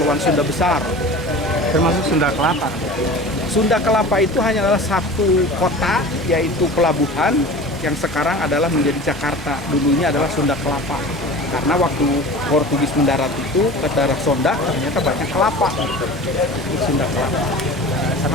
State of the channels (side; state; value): both; normal; correlation 0.37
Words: Sunda Besar, termasuk Sunda Kelapa. Sunda Kelapa itu hanyalah satu kota, yaitu pelabuhan yang sekarang adalah menjadi Jakarta. Dulunya adalah Sunda Kelapa, karena waktu Portugis mendarat itu ke daerah Sonda ternyata banyak kelapa. Sunda Kelapa.